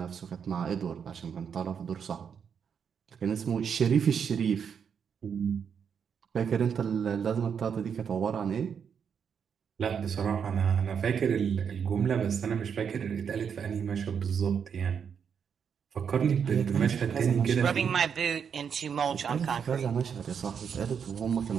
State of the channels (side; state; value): left; quieter; 7.2 dB